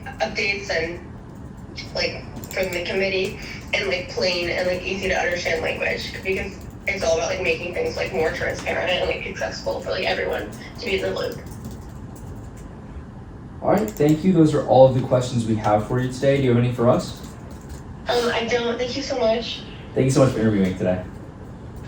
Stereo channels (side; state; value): both; identical; correlation 1.00